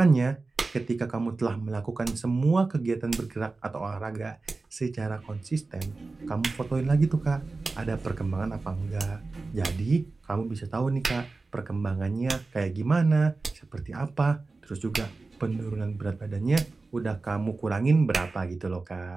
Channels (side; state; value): left; quieter; 3.7 dB